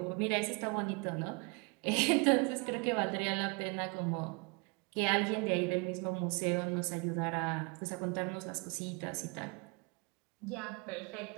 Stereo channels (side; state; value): left; quieter; 31.6 dB